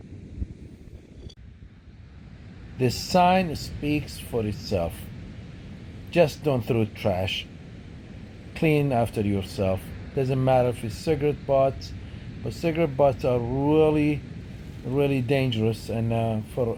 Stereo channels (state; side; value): identical; both; correlation 1.00